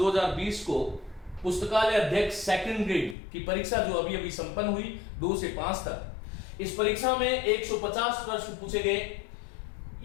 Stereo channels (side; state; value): right; drops out; at 3.2 s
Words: को पुस्तकालय अध्यक्ष सेकंड ग्रेड की परीक्षा जो अभी संपन्न हुई 2 से 5 तक, इस परीक्षा में 150 प्रश्न पूछे गए।